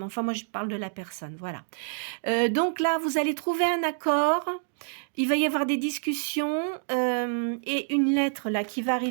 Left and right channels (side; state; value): left; silent; digital silence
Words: enfin moi je parle de la personne, voilà. Donc là vous allez trouver un accord, il va y avoir des discussions et une lettre là qui va